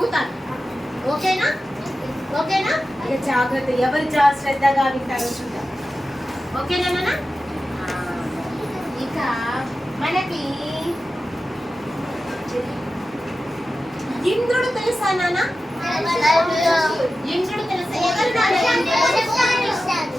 ఓకేనా? ఓకేనా? ఇక జాగ్రత్త, ఎవరు శ్రద్ధగా వింటారో చూద్దాం. ఓకేనా నాన్న? ఇక మనకి ఇంద్రుడు తెలుసా నాన్న? ఇంద్రుడు తెలుసా?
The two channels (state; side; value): normal; both; correlation 0.93